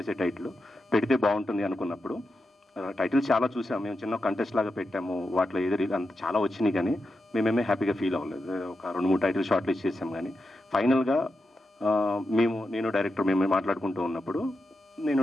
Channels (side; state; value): both; normal; correlation 0.88